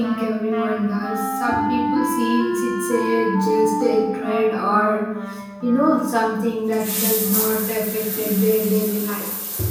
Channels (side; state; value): both; identical; correlation 1.00